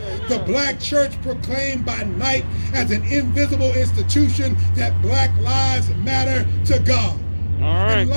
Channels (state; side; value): inverted; both; correlation -1.00